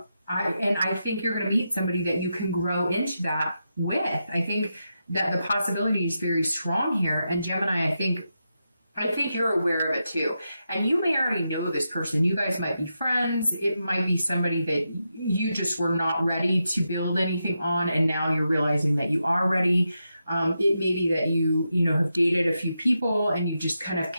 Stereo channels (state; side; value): inverted; both; correlation -0.87